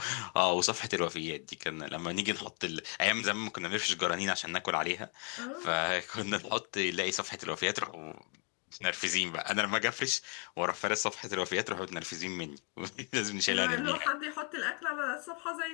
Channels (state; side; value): quieter; right; 36.3 dB